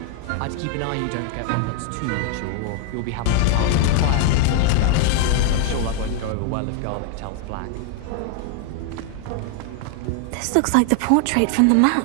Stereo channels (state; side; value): different; both; correlation 0.00